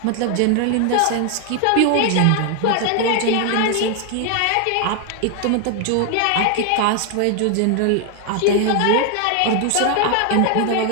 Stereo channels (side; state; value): both; different; correlation 0.00